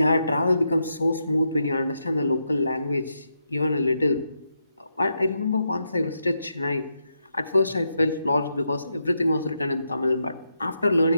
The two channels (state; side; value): inverted; both; correlation -0.83